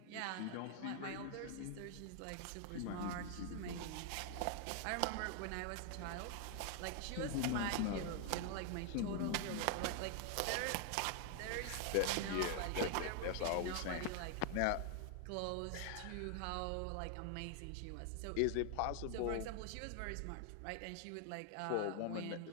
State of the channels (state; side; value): different; both; correlation 0.00